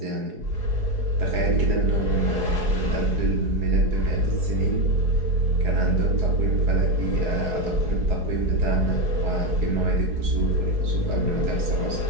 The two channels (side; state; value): left; late; 4.7 ms